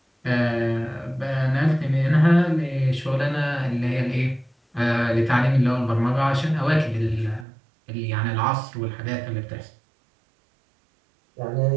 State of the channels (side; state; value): left; drops out; at 7.5 s